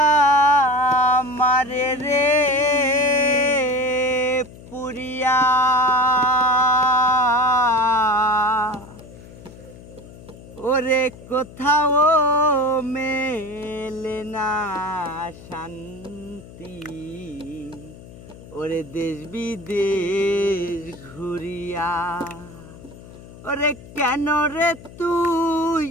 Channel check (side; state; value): left; noise; hum, 18 dB below the sound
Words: মারে রে পুরিয়া ওরে কোথাও মেলে না শান্তি ওরে দেশ বিদেশ ঘুরিয়া ওরে কেন রে তুই